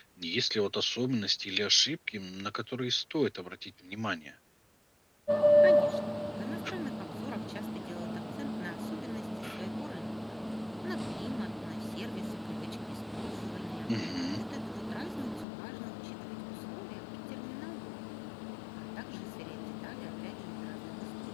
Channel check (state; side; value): drops out; right; at 15.5 s